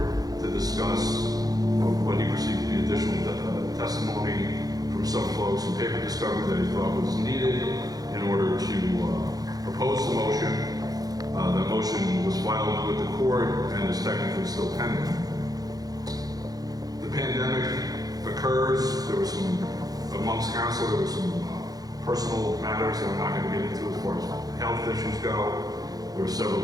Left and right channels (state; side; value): late; left; 0.18 ms